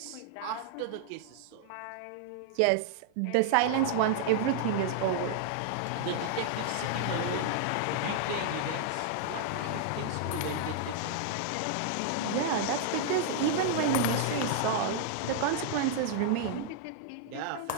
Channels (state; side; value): different; both; correlation -0.01